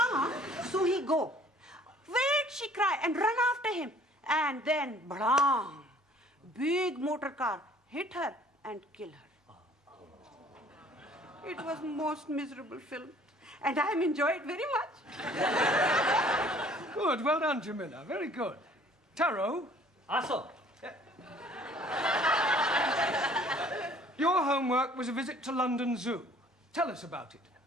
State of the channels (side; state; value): both; normal; correlation 0.55